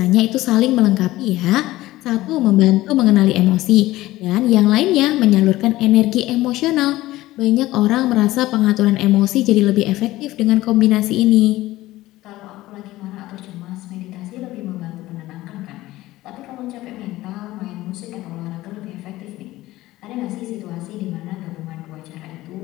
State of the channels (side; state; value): right; quieter; 17.0 dB